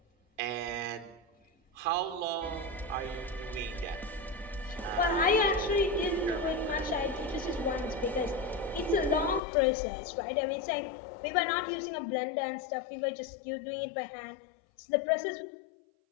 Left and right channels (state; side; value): drops out; right; at 9.4 s